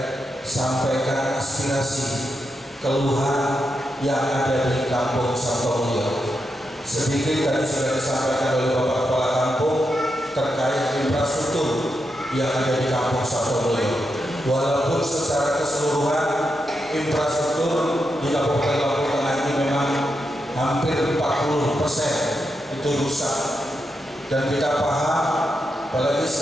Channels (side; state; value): both; normal; correlation 0.85